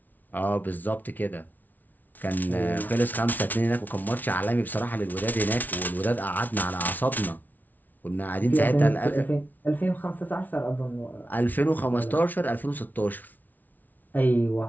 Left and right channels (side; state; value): right; late; 0.081 ms